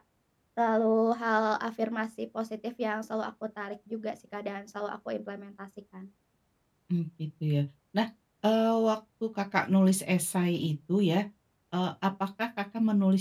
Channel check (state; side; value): identical; both; correlation 1.00